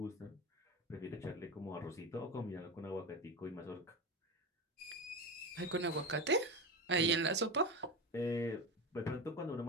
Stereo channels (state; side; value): normal; both; correlation 0.21